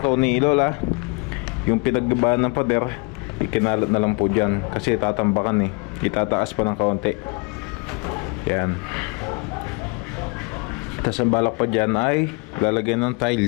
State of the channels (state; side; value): quieter; right; 31.3 dB